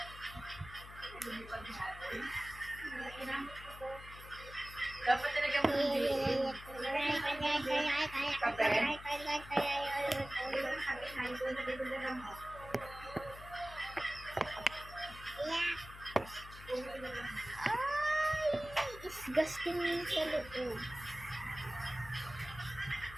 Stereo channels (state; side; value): noise; left; hum, 15 dB below the sound